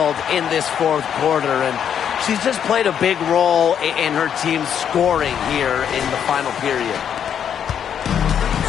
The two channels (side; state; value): right; quieter; 8.6 dB